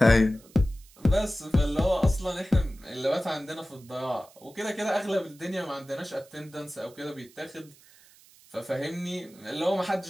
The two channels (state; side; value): noise; right; hiss, 26 dB below the sound